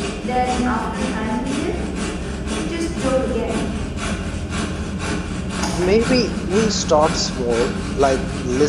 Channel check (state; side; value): identical; both; correlation 1.00